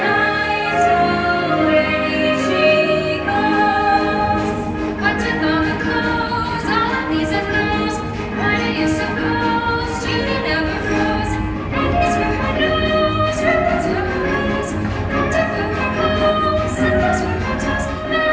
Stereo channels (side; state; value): both; identical; correlation 1.00